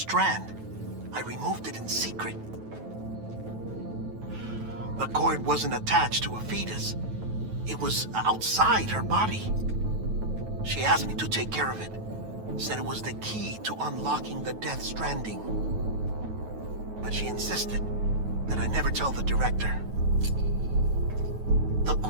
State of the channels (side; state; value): left; late; 9.2 ms